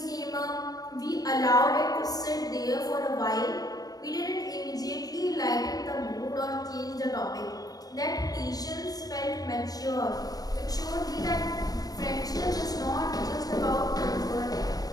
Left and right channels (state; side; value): late; right; 0.18 ms